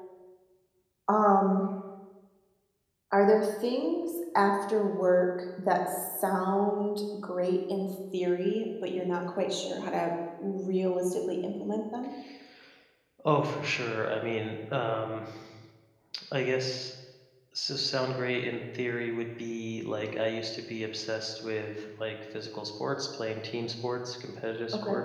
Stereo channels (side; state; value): both; identical; correlation 1.00